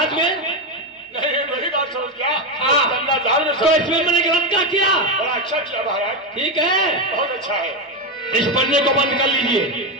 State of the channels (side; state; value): both; normal; correlation 0.10